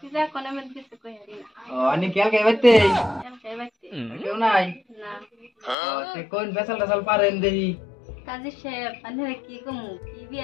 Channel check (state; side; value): drops out; right; at 5.8 s